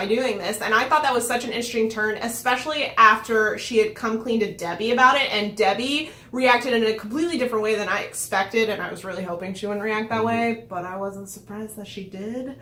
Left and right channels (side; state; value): both; identical; correlation 1.00